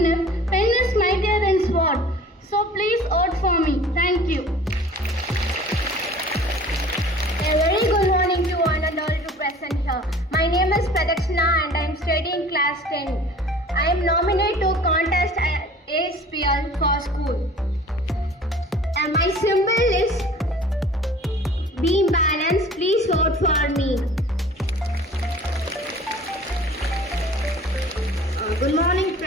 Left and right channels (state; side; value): normal; both; correlation 0.46